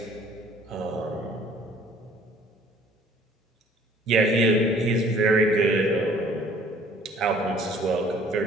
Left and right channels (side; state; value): both; normal; correlation 0.55